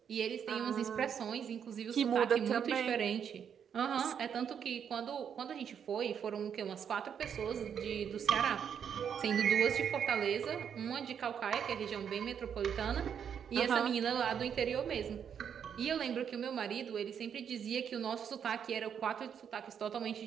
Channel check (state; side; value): quieter; left; 7.9 dB